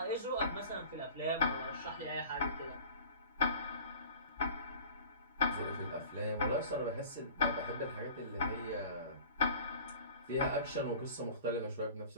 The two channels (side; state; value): both; inverted; correlation -0.43